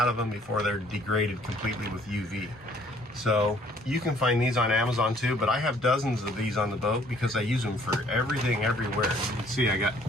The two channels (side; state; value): both; normal; correlation 0.60